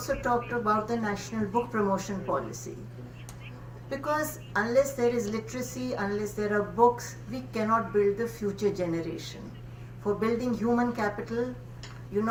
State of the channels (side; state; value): both; identical; correlation 1.00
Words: talked about the national book promotion policy. Because unless there is literacy, unless there are books, we cannot build the future generation. For building human capital, You